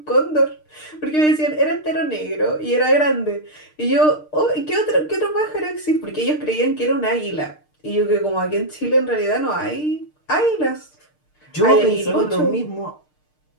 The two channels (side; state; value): right; late; 6.6 ms